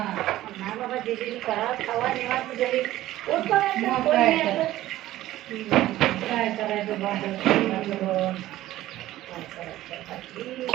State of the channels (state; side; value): quieter; left; 15.0 dB